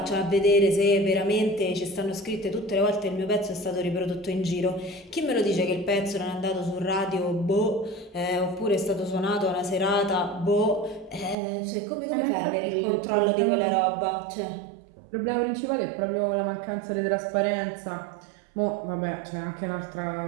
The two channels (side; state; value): left; drops out; at 11.4 s